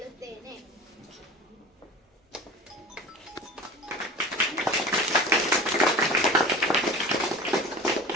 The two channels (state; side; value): normal; both; correlation 0.35